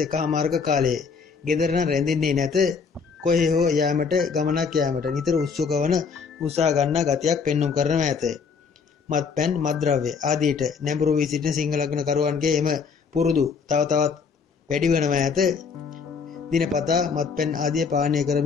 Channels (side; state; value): right; quieter; 5.6 dB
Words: කාලයේ ගෙදර නම් රැඳෙන්නේ නැත. කොහේ හෝ යාමට ගමනක් යාමට නිතර උත්සුක වන උත්සාහ ගන්නා ගතියක් පෙන්눔 කරනවා ඇත. මත්පැන් මත්ද්‍රව්‍ය ආදීට නැඹුරු වී සිටින සිංහ ලග්නකරුවන්ගේ එම පුරුදු තව තවත් වැඩි වෙනවා ඇත. දිනපතා මත්පැන් ආදිය පානය